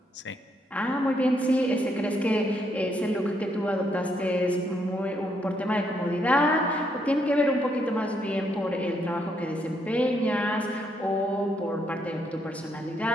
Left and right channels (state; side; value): normal; both; correlation 0.75